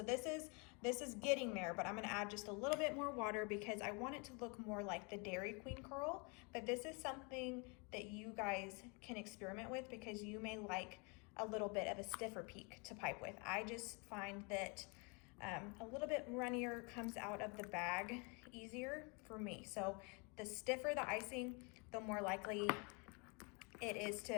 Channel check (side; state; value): right; quieter; 32.4 dB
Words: this is getting there, but I'm gonna add just a little bit more water because I want it to look more like the Dairy Queen curl. But this is something that you guys can experiment with because you may like a little bit of a stiffer peak to pipe with. I just find that a little bit runnier comes out of the bag easier for me. So the stiffer the icing, the more likely it is